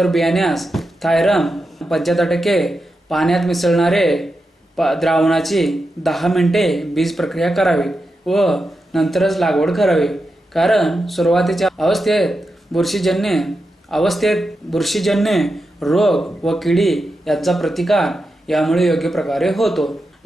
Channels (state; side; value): normal; both; correlation 0.88